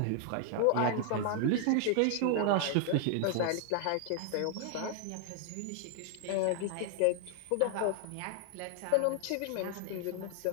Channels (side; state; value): both; different; correlation 0.00